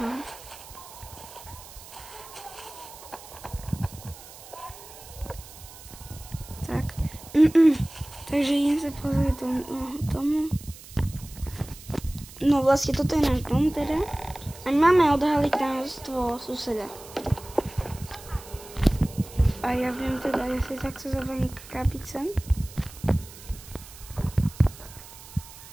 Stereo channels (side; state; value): right; noise; hiss, 17 dB below the sound